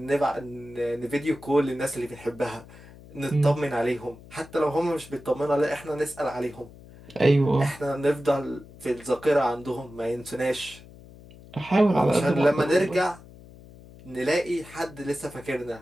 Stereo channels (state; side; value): noise; left; hum, 20 dB below the sound